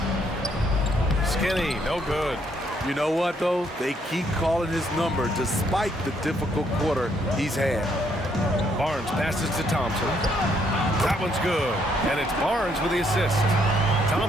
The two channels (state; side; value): normal; both; correlation 0.71